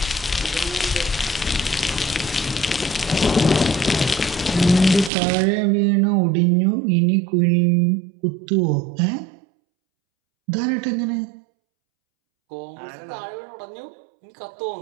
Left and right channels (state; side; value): drops out; left; at 5.1 s